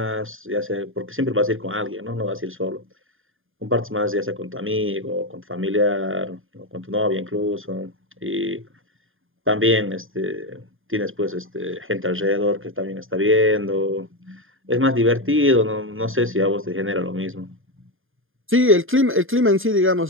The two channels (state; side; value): late; left; 0.59 ms